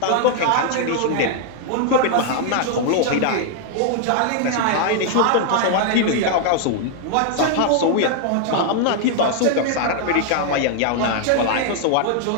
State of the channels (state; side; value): different; both; correlation 0.00